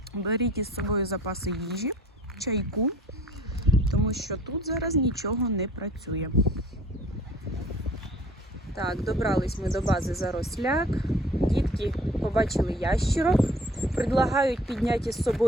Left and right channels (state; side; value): normal; both; correlation 0.51